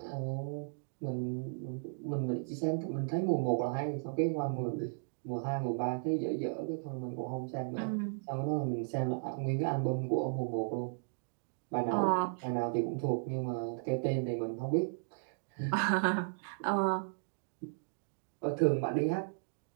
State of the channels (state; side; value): silent; left; digital silence